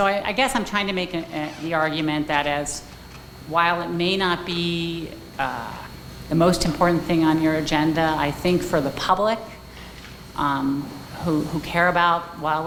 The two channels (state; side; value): identical; both; correlation 1.00